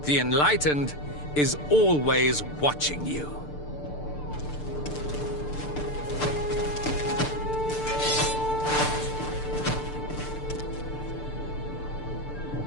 the Enlightened is always watching you.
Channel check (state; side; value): late; right; 6.8 ms